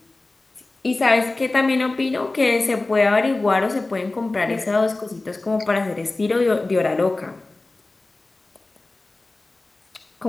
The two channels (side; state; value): right; quieter; 3.1 dB